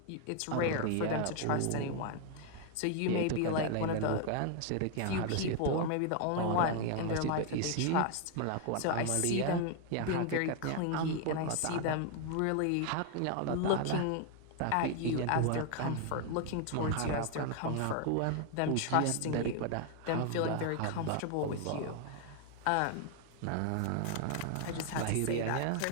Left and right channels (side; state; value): both; different; correlation 0.00